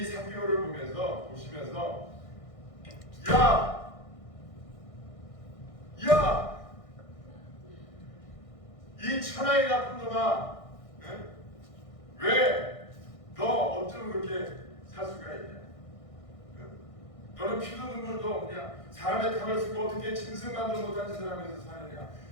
삭개오를 보시면서 야! 이 천하의 나쁜 놈아 왜 너 어쩜 그렇게 살 수가 있냐? 너는 피도 눈물도 그냥 사람의 탕을 쓰고 어떻게 짐승만도 못한 짓을 하면서 사느냐?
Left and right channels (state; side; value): late; right; 1.6 ms